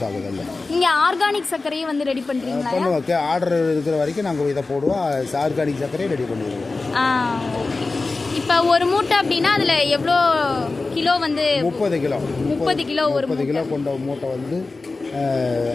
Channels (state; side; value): quieter; right; 3.6 dB